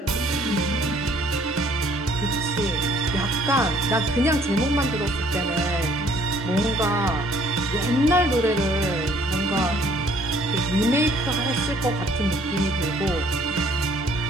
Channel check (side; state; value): both; normal; correlation 0.60